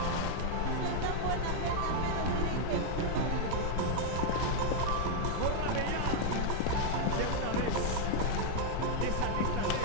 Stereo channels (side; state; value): both; different; correlation 0.00